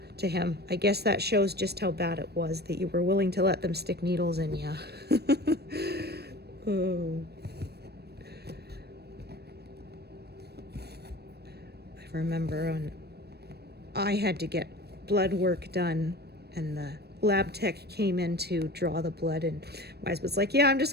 to him, I guess that shows just how bad it was that you were willing to let them stick needles in you. Oh. I remember when I had to get blood work done, and the lab tech came in to draw the blood, and my husband's like, yeah, I'm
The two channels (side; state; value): left; late; 0.47 ms